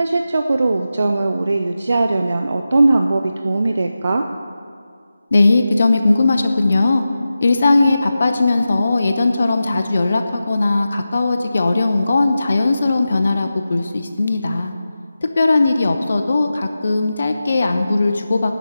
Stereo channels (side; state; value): both; inverted; correlation -0.93